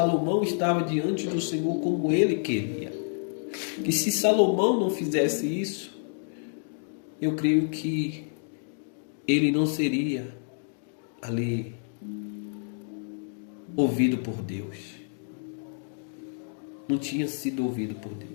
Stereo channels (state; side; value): silent; right; digital silence